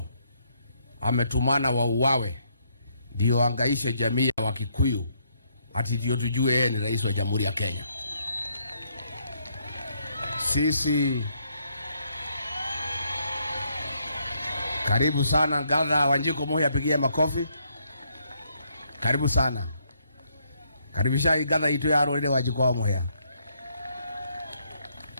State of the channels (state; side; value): inverted; both; correlation -0.73